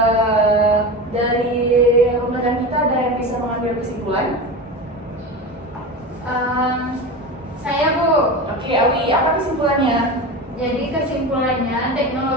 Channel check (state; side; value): normal; both; correlation 0.26